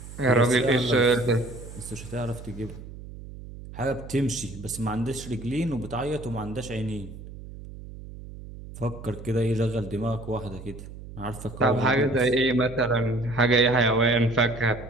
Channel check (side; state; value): right; noise; hum, 14 dB below the sound